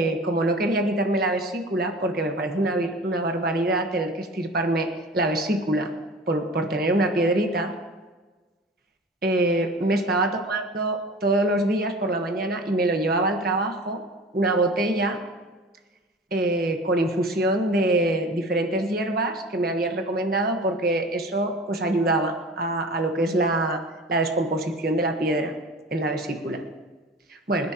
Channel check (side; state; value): both; normal; correlation 0.39